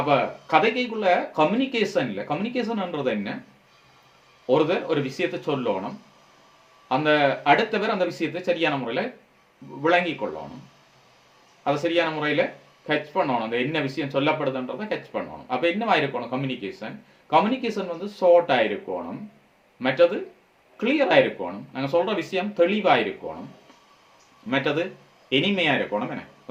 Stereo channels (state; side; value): identical; both; correlation 1.00